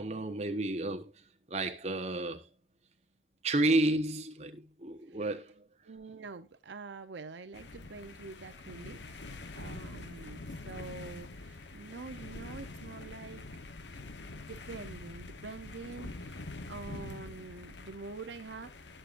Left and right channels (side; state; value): both; normal; correlation 0.54